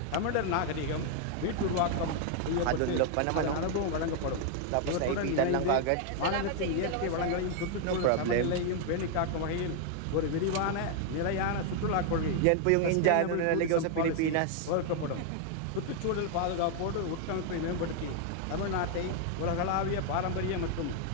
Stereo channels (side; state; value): both; different; correlation 0.00